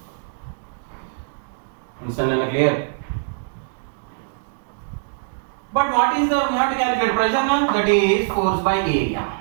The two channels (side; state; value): left; silent; digital silence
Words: Understand and clear? But what is the, we have to calculate pressure now? That is force by area.